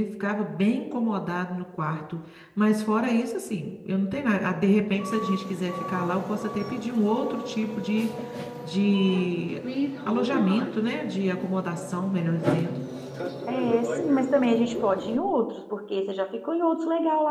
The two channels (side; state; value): both; identical; correlation 1.00